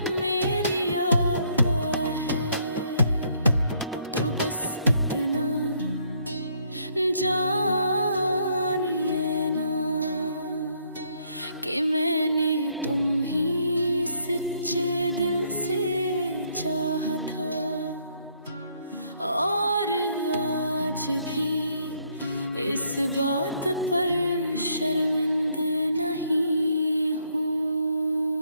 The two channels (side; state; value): both; inverted; correlation -0.69